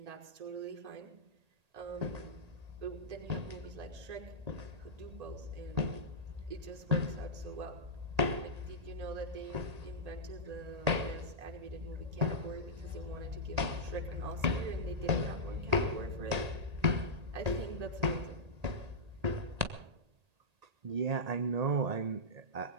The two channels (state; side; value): late; left; 1.8 ms